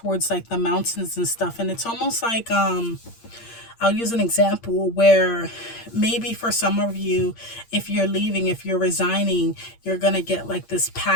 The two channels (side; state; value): right; late; 8.7 ms